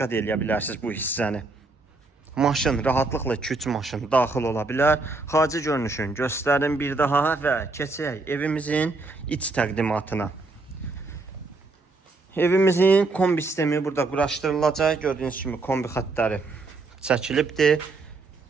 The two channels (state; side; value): quieter; left; 3.5 dB